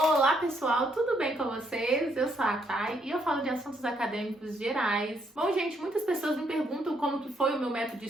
pessoal, tudo bem com vocês? Eu sou a Thay e eu falo de assuntos acadêmicos gerais. Bom gente, muitas pessoas me perguntam como que foi o meu método de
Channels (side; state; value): both; normal; correlation 0.73